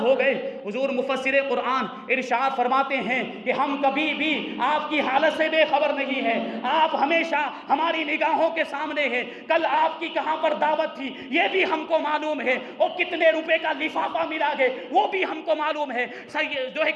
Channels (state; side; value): identical; both; correlation 1.00